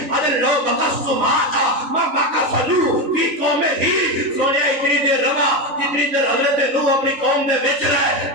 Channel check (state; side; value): late; left; 3.0 ms